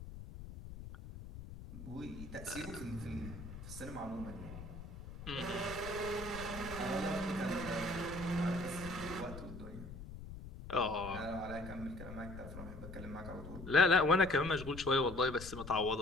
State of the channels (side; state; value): left; noise; rumble, 12 dB below the sound